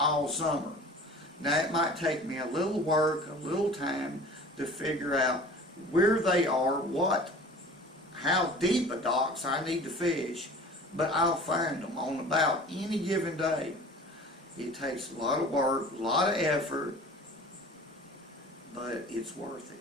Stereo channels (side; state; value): both; normal; correlation 0.43